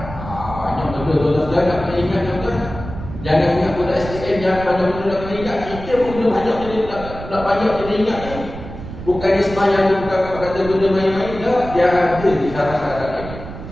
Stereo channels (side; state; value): right; noise; rumble, 11 dB below the sound